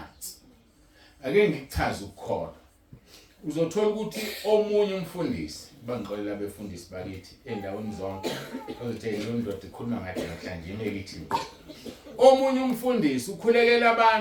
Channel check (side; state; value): both; identical; correlation 1.00